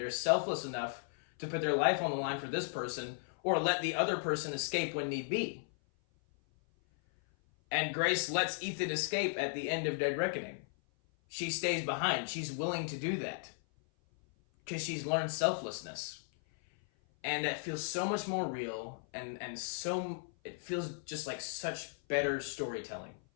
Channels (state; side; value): silent; right; 54 dB below the other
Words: selfless enough to put their life on the line for this person or let the other person escape when need be. And Grace lets Ethan escape at the end of Dead Reckoning. She stays behind. She's willing to do that because she's learned selflessness. And that feels so much more real and so it feels just like such better storytelling,